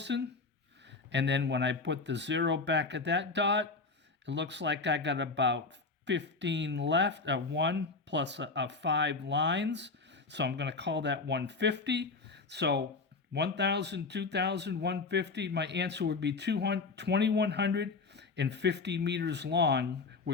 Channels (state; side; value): quieter; right; 4.1 dB